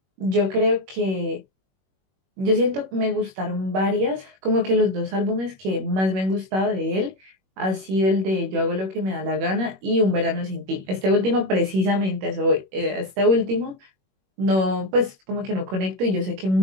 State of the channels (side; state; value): left; late; 21 ms